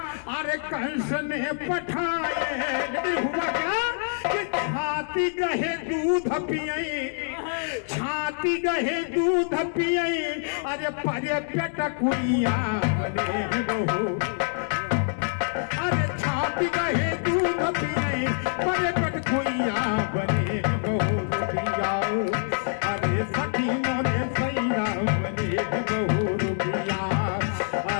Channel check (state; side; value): silent; right; digital silence